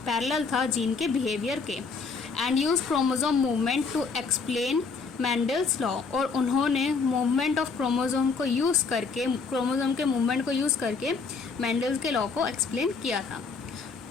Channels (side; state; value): right; quieter; 4.8 dB